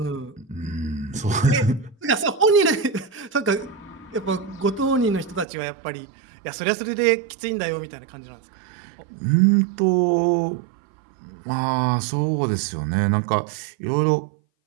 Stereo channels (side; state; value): left; drops out; at 5.5 s